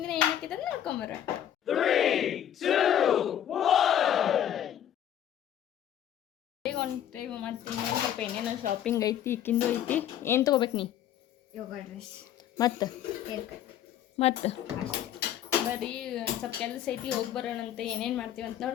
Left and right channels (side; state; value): right; quieter; 10.7 dB